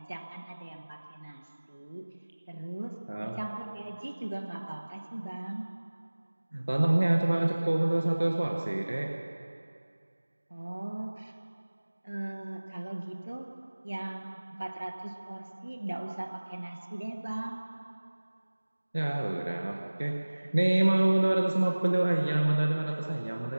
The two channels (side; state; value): both; inverted; correlation -1.00